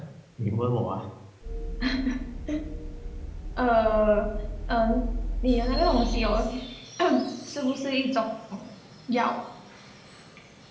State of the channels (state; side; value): identical; both; correlation 1.00